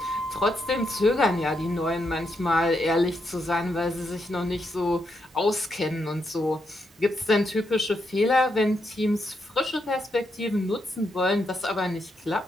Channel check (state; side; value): normal; both; correlation 0.81